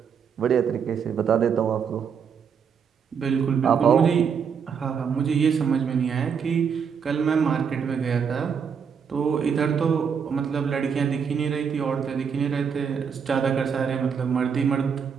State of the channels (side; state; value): left; quieter; 6.8 dB